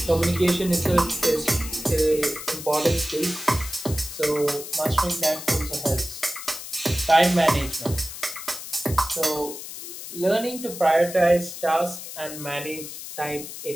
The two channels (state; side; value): noise; left; hiss, 10 dB below the sound